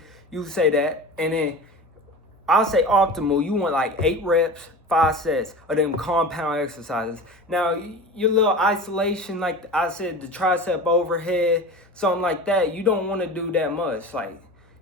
You say that, and then I'll say optimal. You want like 8 reps, 5 sets of them compound exercises. Now, your little isolation, like I said, the tricep overhead, something like that, you don't want to do that much. Like,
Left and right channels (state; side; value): normal; both; correlation 0.32